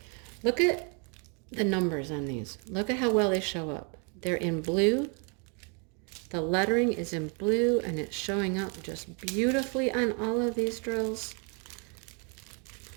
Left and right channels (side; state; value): left; quieter; 36.3 dB